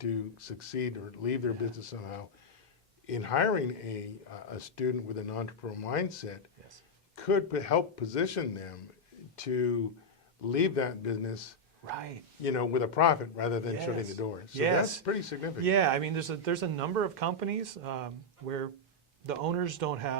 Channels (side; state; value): both; normal; correlation -0.02